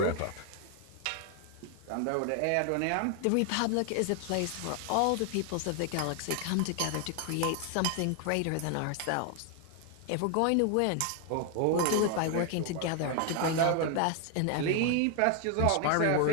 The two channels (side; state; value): both; different; correlation 0.00